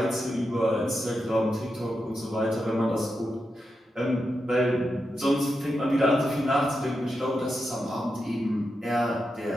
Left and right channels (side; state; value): both; normal; correlation 0.87